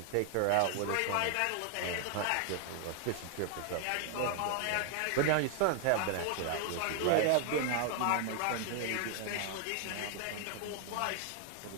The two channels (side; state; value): both; different; correlation 0.00